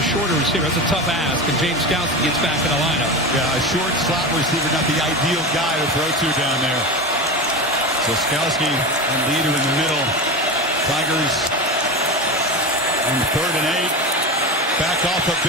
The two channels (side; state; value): both; normal; correlation 0.24